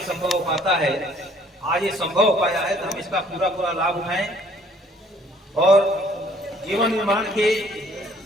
संभव हो पाता है, आज ये संभव हो पाया है, तो हम इसका पूरा लाभ उठाएं और जीवन निर्माण के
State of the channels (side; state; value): both; normal; correlation 0.59